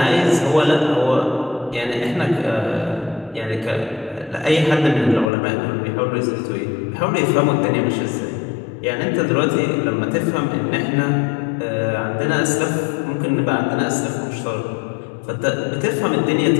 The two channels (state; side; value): drops out; right; at 5.3 s